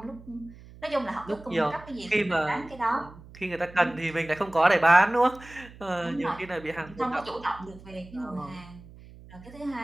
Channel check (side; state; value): right; noise; hum, 19 dB below the sound